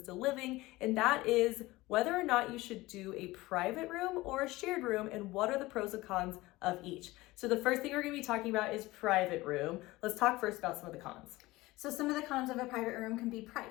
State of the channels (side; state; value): right; quieter; 19.6 dB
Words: living, and that is whether or not you should do a private room or a shared room and what are the pros and cons of each. So the first thing we're going to be talking about is private room. Let's talk first about some of the cons. So some of the cons of a private room can be